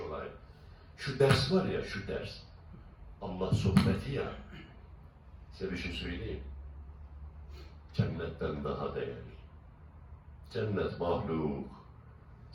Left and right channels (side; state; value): both; identical; correlation 1.00